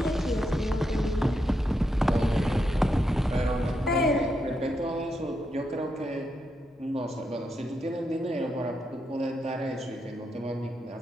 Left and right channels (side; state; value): both; normal; correlation 0.83